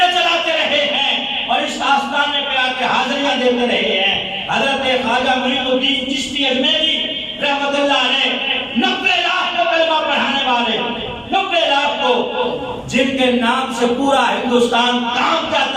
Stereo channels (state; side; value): identical; both; correlation 1.00